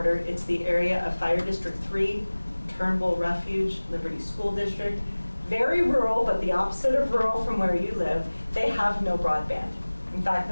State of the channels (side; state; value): both; inverted; correlation -1.00